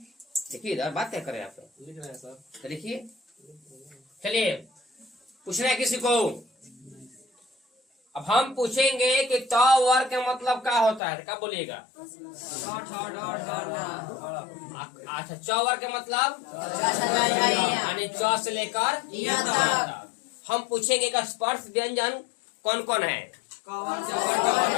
देखिए इधर बात क्या कर रहे हैं आप, लिख रहे हैं सर। तो लिखिए। चलिए पूछना है किसी को। अब हम पूछेंगे कि त वर्ग का मतलब क्या होता है, क्या बोलिएगा। अच्छा च वर्ग का मतलब यानी च से लेकर तक। हम पूछेंगे कि स्पर्श व्यंजन कौन कौन है,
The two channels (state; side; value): drops out; right; at 11.0 s